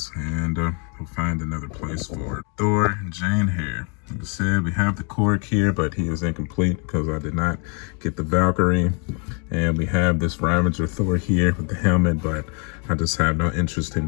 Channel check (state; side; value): quieter; right; 36.3 dB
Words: and we'll find another place for Thor and Jane here. Like I said, we have the Korg here, but he is incomplete because I did not get the Valkyrie. And we have this Ravager Thor here with the helmet, but I just have no interest